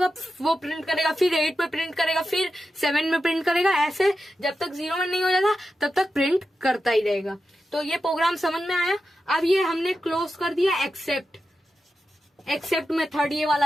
वो प्रिंट करेगा, फिर 8 में प्रिंट करेगा, फिर 7 में प्रिंट करेगा, ऐसे जब तक 0 में नहीं हो जाता तब तक प्रिंट करता ही रहेगा। तो ये प्रोग्राम समझ में आया। अब ये हमने क्लोज कर दिया एक्सेप्ट मेथड, ये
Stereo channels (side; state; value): both; normal; correlation 0.90